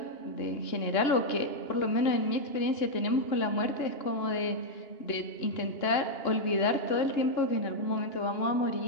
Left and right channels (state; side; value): late; right; 2.9 ms